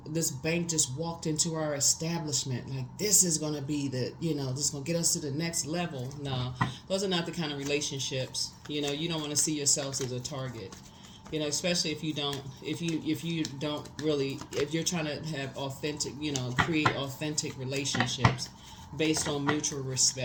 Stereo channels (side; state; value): both; identical; correlation 1.00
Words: this bank just walked into our establishment. Like, this is going to be this is going to get us to the next level. No, those are not the kind of relationships. You don't want to see yourselves as a target. Especially if you're trying to have authentic, create authentic relationships based on mutual